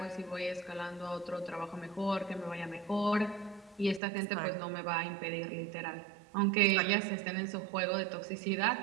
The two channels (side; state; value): left; drops out; at 4.0 s